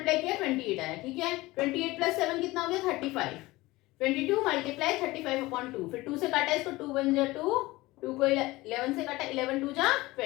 किया 28 आया। ठीक है, 28 प्लस 7 कितना हो गया 35, 22 मल्टीप्लाई 35/2, फिर 2 से काटा इसको 2 1 जा 2 2 को 11 से काटा, 11 2 जा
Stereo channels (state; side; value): quieter; right; 20.0 dB